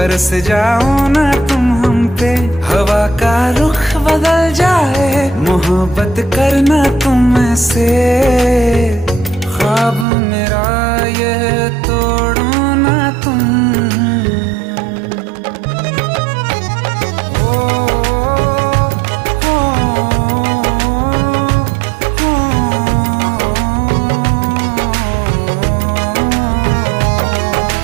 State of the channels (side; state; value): left; drops out; at 10.1 s